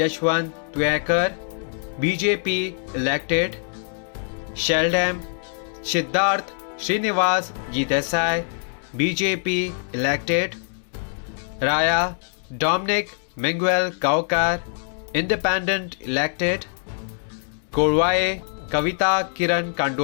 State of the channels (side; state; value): right; silent; 61 dB below the other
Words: Yashwant Tuekar BJP elected. Sheldam Siddharth Srinivas Desai BJP elected. Raya Dominic Miguel Gaukar Independent elected. Korwaye Kavita Kiran